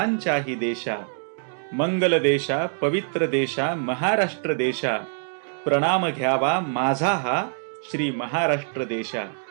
देशा, मंगल देशा पवित्र देशा महाराष्ट्र देशा, प्रणाम घ्यावा माझा हा श्री महाराष्ट्र देशा.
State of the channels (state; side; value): silent; left; digital silence